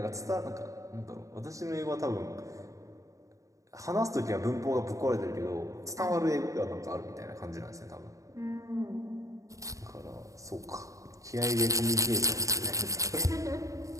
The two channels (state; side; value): late; left; 0.16 ms